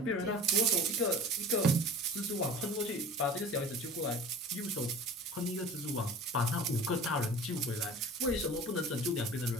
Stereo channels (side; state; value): both; normal; correlation 0.40